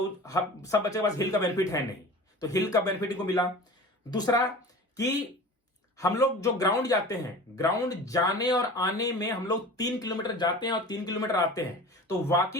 सब बच्चे के पास हिल का बेनिफिट है नहीं, तो हिल का बेनिफिट इनको मिला। दूसरा कि हम लोग जो ग्राउंड जाते हैं, ग्राउंड जाने और आने में हम लोग 3 किलोमीटर जाते हैं और 3 किलोमीटर आते हैं, तो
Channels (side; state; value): both; normal; correlation 0.37